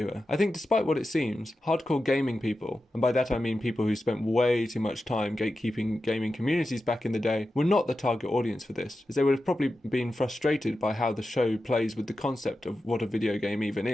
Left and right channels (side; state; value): both; normal; correlation 0.91